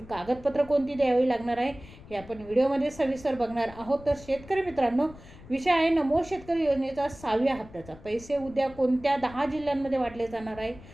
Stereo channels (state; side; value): noise; left; rumble, 19 dB below the sound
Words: कोणती द्यावी लागणार आहे हे आपण व्हिडिओमध्ये सविस्तर बघणार आहोत. तर शेतकरी मित्रांनो, विषय आहे नमो शेतकरी योजनेचा 6व्या हप्त्याचा पैसे उद्या कोणत्या 10 जिल्ह्यांमध्ये वाटले जाणार आहे.